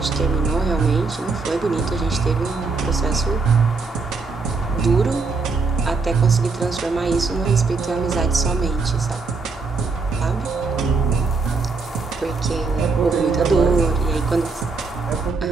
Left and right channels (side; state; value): left; quieter; 4.3 dB